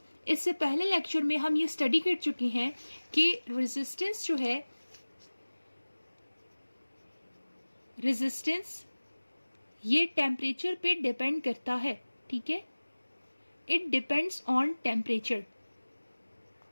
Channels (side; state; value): both; inverted; correlation -1.00